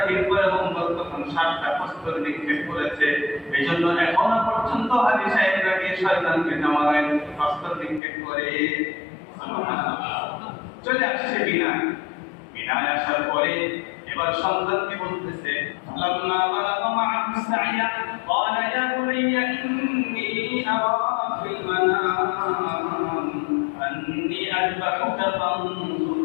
পয়গম্বর তখন 7টা প্রস্তর নিক্ষেপ করেছে। এইজন্য এখনো পর্যন্ত হাজী সাহেবরা গিয়ে শয়তানকে নামায় প্রস্তর নিক্ষেপ করে। চলে আসছে বিনায়। বিনায় আসার পরে এবার সন্তানকে বলতেছে লাম্মা বালাগা মা'আহু সা'য়া ক্বালা ইয়া বুনাইয়া ইন্নী আরা ফিল মানাম আন্নী আযবাহুকা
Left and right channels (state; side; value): drops out; right; at 8.0 s